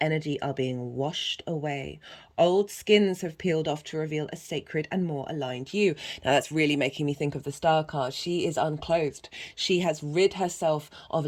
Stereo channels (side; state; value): both; identical; correlation 1.00